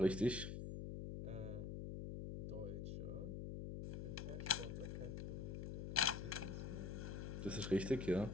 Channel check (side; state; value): left; noise; hum, 4 dB below the sound